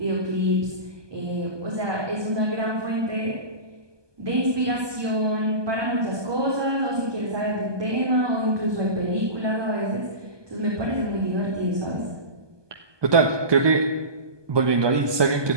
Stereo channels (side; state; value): left; late; 1.2 ms